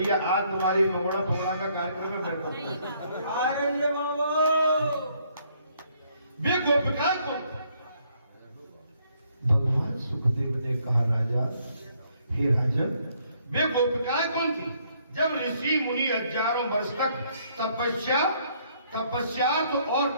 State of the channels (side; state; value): both; inverted; correlation -0.68